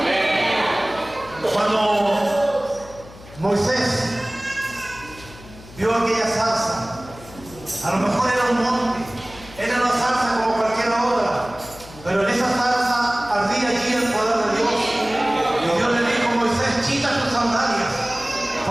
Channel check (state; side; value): noise; left; hum, 19 dB below the sound